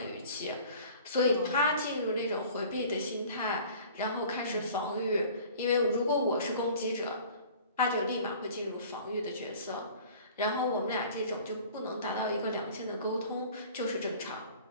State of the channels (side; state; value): both; inverted; correlation -0.46